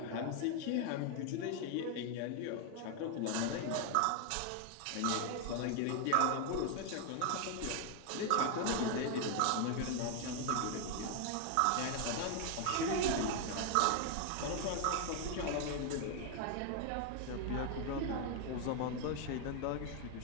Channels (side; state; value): both; different; correlation 0.01